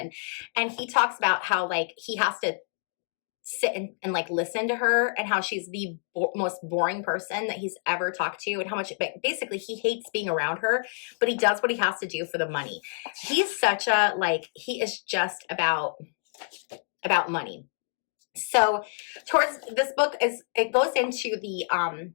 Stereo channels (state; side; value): silent; right; digital silence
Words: And he talks about how like he has to sit and like listen to her and how she's the most boring person that he's ever talked to and how much basically he hates being around her, but he does what he has to do for the money. He's such a like, he is just about money. So towards this book it goes into